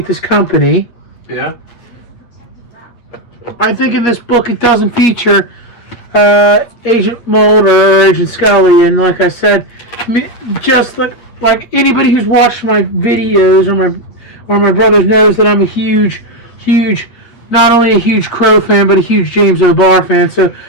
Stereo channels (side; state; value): right; late; 8.4 ms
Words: this company. Yeah. I think in this book it doesn't feature Agent Mulder or Agent Scully, and like I said, just like anybody who's watched my videos or my brothers knows that I'm a huge, not only a huge Crow fan, but a huge James O'Barr fan. So